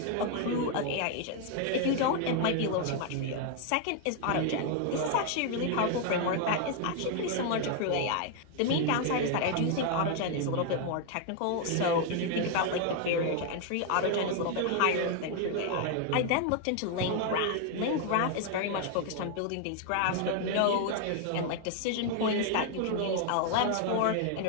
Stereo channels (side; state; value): both; different; correlation 0.00